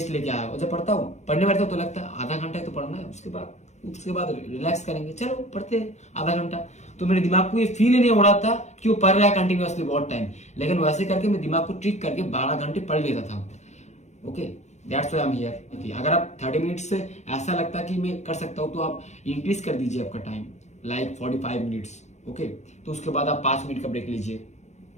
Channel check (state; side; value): late; right; 0.33 ms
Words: लेके आया, और जब पढ़ता हूँ, पढ़ने बैठता हूँ तो लगता है आधा घंटा ही तो पढ़ना है, उसके बाद रिलैक्स करेंगे, चलो पढ़ते हैं आधा घंटा। तो मेरे दिमाग को ये फील ही नहीं हो रहा था कि वो पढ़ रहा है कंटिन्यूअसली बहुत टाइम, लेकिन वैसे करके मैं दिमाग को ट्रिक करके 12 घंटे पढ़ लेता था। Okay, that's why I am here. अगर आप 30 मिनट से ऐसा लगता है कि मैं कर सकता हूँ, तो आप इंक्रीज कर दीजिए आपका टाइम, लाइक 45 मिनट्स। ओके, तो उसके बाद आप 5 मिनट का ब्रेक लीजिए,